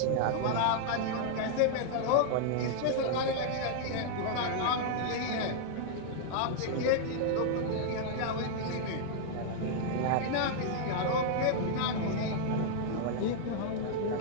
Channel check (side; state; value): both; different; correlation -0.01